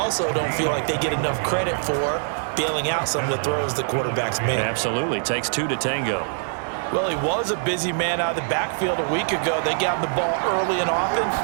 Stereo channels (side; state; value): left; silent; 63 dB below the other